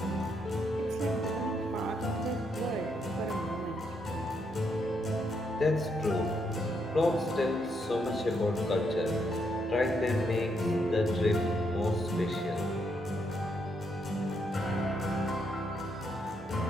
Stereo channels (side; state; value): both; normal; correlation 0.77